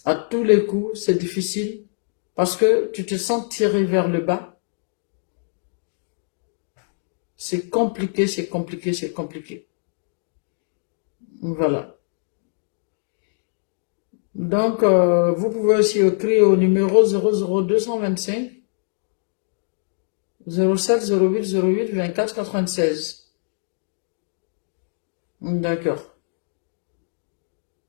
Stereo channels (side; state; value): right; silent; digital silence